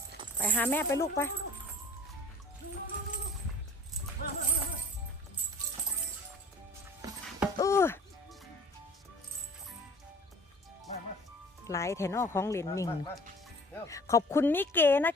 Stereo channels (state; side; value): normal; both; correlation 0.47